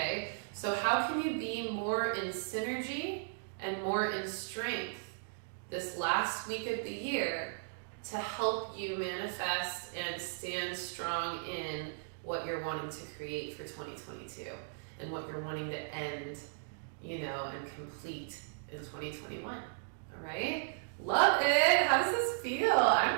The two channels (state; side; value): silent; left; digital silence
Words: so how can you be more in synergy and more in strength this last week of the year to help you manifest and stand strong in what you're wanting to create for 2022 and what you're wanting to end, and complete in 2021? All right? Love it. How does this feel?